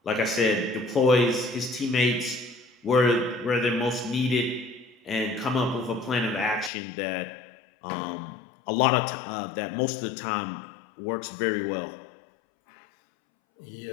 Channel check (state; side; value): drops out; right; at 6.7 s